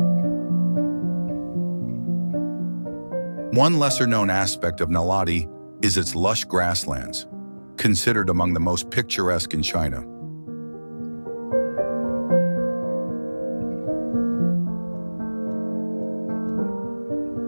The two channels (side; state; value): both; inverted; correlation -1.00